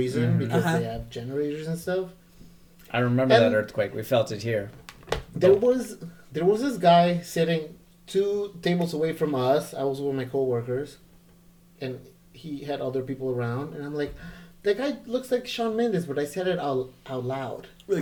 Mhm. because they have generators and stuff. I remember And- that earthquake. We felt it here. There was this guy sitting 2 tables away from us. I was with my coworkers, and he had other people around. And I'm like, that guy looks like Shawn Mendes, but I said it out loud. Like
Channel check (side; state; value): both; identical; correlation 1.00